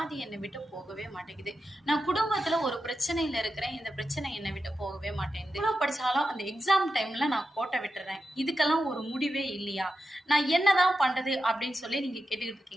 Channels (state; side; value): normal; both; correlation 0.90